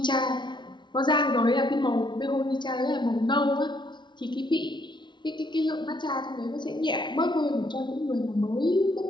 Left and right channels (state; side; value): late; right; 0.22 ms